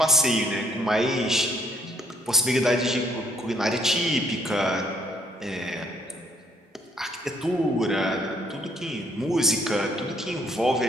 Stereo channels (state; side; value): normal; both; correlation 0.68